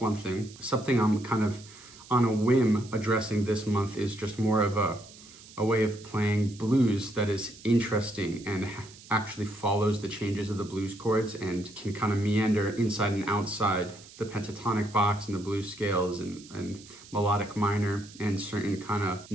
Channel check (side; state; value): right; noise; hiss, 20 dB below the sound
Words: thing. Something I'm kind of on a whim addressing this month is just more of a way of playing blues that is interesting and actually follows the changes of the blues chords and can kind of meander inside and outside the pentatonic box and the blues scales and melodic minor and certain kind of